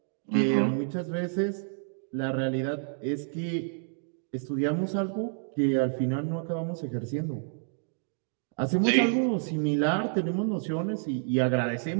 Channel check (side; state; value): left; silent; digital silence